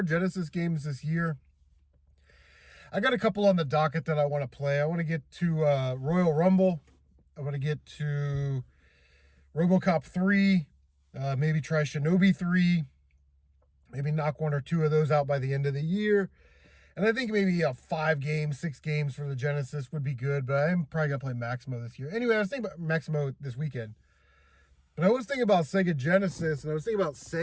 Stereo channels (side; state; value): both; identical; correlation 1.00